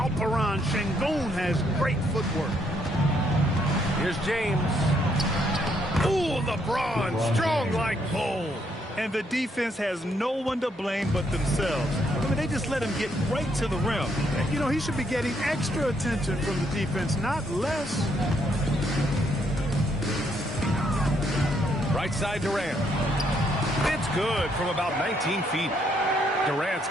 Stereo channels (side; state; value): both; normal; correlation 0.73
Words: Şengün has great footwork. Here's James. Ooh, LeBron, strong like bull. And the defense has no one to blame but themselves. I mean, they just let him get right to the rim. You know, he should be getting extra attention from the defense, not less. Right side Durant. It's good from about 19 feet. Durant's